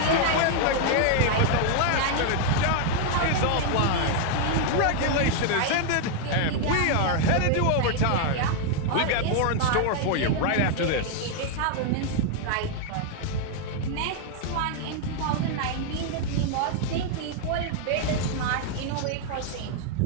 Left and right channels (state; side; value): different; both; correlation 0.00